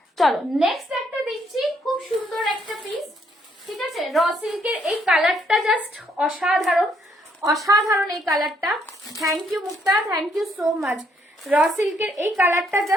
চলো নেক্সট একটা দিচ্ছি, খুব সুন্দর একটা পিস। ঠিক আছে, র সিল্কের এই কালারটা জাস্ট অসাধারণ, অসাধারণ এই কালারটা। Thank you Mukta, thank you so much. Raw সিল্কের এই কালারটা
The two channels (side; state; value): both; normal; correlation 0.71